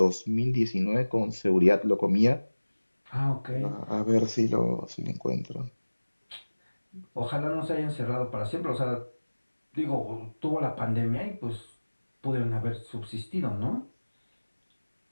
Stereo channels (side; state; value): both; inverted; correlation -1.00